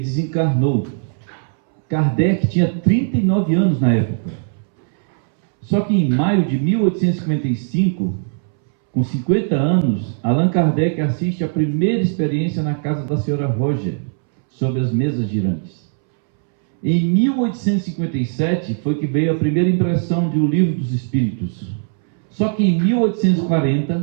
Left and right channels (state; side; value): silent; left; 67 dB below the other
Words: Kardec tinha 39 anos na época. Só que em maio de 1855, com 50 anos, Allan Kardec assiste à primeira experiência na casa da senhora Roger, sobre as mesas girantes. Em 1857 foi que veio a primeira impressão de O Livro dos Espíritos. Só que em